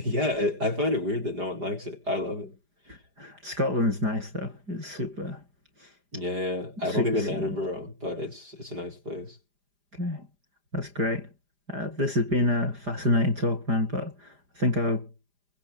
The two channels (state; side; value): late; left; 4.9 ms